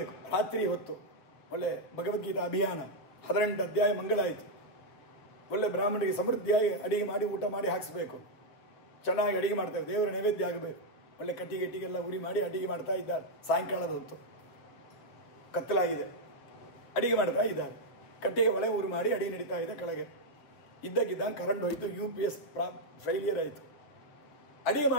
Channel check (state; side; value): late; right; 7.1 ms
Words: ರಾತ್ರಿ ಹೊತ್ತು, ಒಳ್ಳೆ ಭಗವದ್ಗೀತಾ ಅಭಿಯಾನ 18 ಅಧ್ಯಾಯ ಮಂಗಳಾಯಿತು. ಒಳ್ಳೆ ಬ್ರಾಹ್ಮಣರಿಗೆ ಸಮೃದ್ಧಿಯಾಗಿ ಅಡಿಗೆ ಮಾಡಿ ಊಟ ಮಾಡಿ ಹಾಕಿಸ್ಬೇಕು. ಚೆನ್ನಾಗಿ ಅಡಿಗೆ ಮಾಡ್ತೇವೆ, ದೇವರ ನೈವೇದ್ಯ ಆಗಬೇಕು. ಒಳ್ಳೆ ಕಟ್ಟಿಗೆಲ್ಲ ಉರಿ ಮಾಡಿ ಅಡಿಗೆ ಮಾಡ್ತಾ ಇದ್ದಾರೆ. ಸಾಯಂಕಾಲದ ಹೊತ್ತು ಕತ್ತಲಾಗಿದೆ, ಅಡಿಗೆ ಮಾಡ್ತಾ ಇದ್ದಾರೆ. ಕಟ್ಟಿಗೆ ಒಳೆ ಉರಿ ಮಾಡಿ ಅಡಿಗೆ ನಡೀತಾ ಇದೆ. ಕೆಳಗೆ ಇದ್ದಕ್ಕಿದ್ದಂಗೆ ಕರೆಂಟ್ ಹೋಯಿತು, UPS ಫೈಲಿಯರ್ ಆಯಿತು. ಅಡಿಗೆ